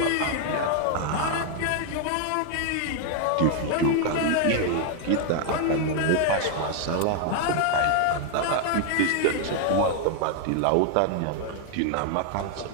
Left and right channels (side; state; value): both; different; correlation 0.00